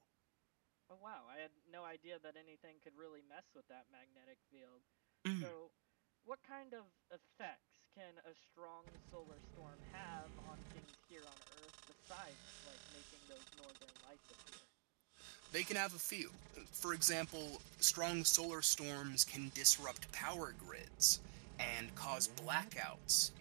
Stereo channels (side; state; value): left; silent; digital silence